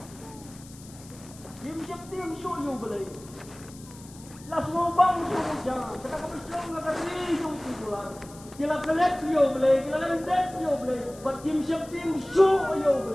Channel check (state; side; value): noise; left; hiss, 20 dB below the sound